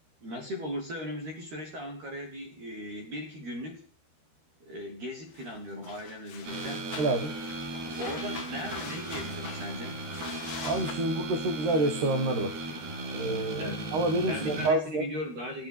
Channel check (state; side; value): late; left; 13 ms